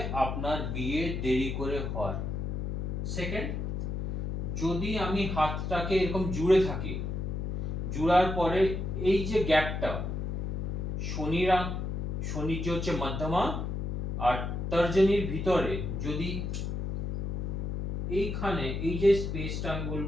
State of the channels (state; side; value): noise; left; hum, 2 dB below the sound